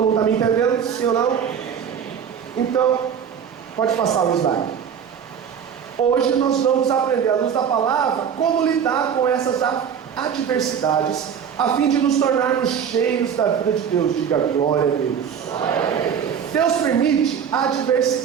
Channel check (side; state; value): left; quieter; 7.7 dB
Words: mundo está me entendendo? Sim ou não? Então, pode passar o slide. Hoje nós vamos aprender, à luz da palavra, como lidar com essas adversidades, a fim de nos tornarmos cheios da vida de Deus. Diga glória a Deus. Deus permite